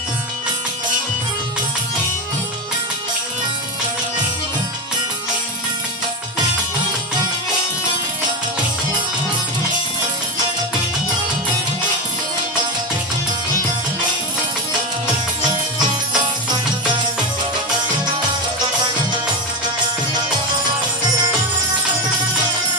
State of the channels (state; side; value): normal; both; correlation 0.14